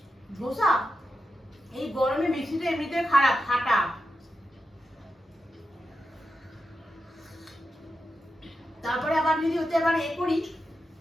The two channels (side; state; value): both; normal; correlation 0.89